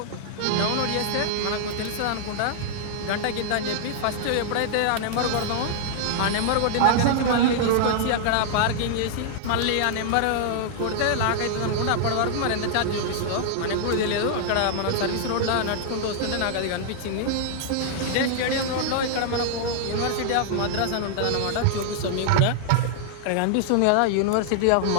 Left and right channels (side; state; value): both; different; correlation -0.01